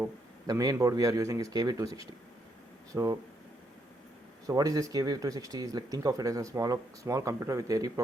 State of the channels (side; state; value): both; normal; correlation 0.76